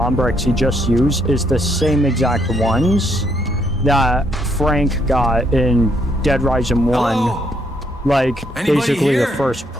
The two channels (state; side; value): normal; both; correlation 0.72